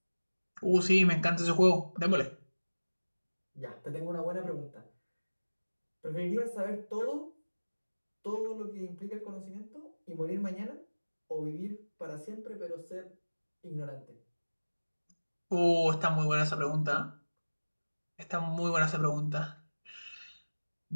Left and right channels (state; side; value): inverted; both; correlation -1.00